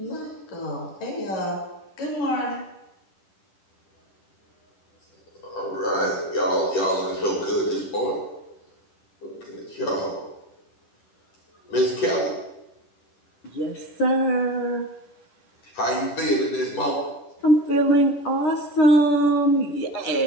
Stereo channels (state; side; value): late; right; 10 ms